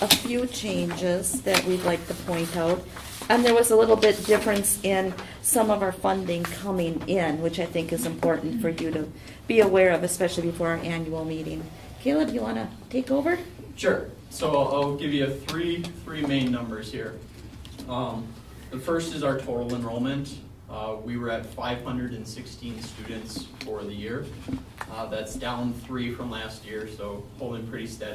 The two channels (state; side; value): identical; both; correlation 1.00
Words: a few changes that we'd like to point out. And there was a little bit difference in some of our funding coming in, which I think is important for you to be aware of, especially before our annual meeting. Caleb, you want to take over? Sure. So I'll give you three main numbers here. The first is our total enrollment. We were at 516 students for the year. That's down 3 from last year, so holding pretty